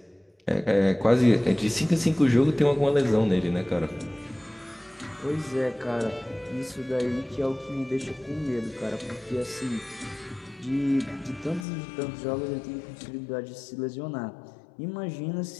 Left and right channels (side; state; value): right; drops out; at 11.7 s